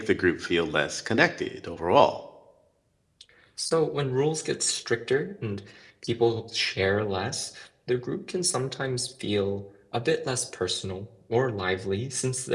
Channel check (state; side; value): identical; both; correlation 1.00